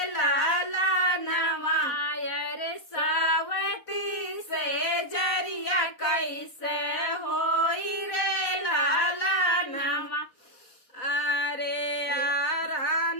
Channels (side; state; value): right; late; 4.0 ms